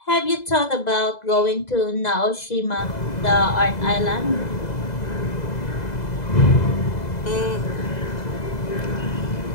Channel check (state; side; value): late; right; 2.0 ms